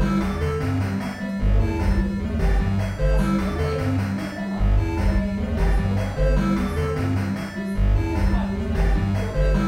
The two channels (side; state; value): both; identical; correlation 1.00